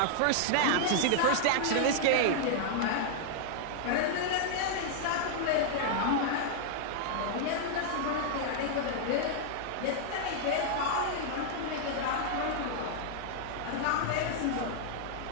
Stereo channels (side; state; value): both; different; correlation -0.01